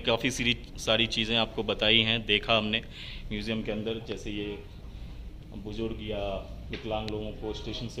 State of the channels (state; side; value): identical; both; correlation 1.00